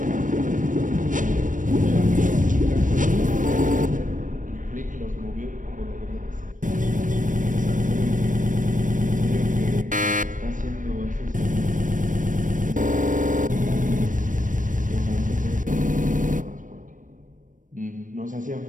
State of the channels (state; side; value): late; left; 0.38 ms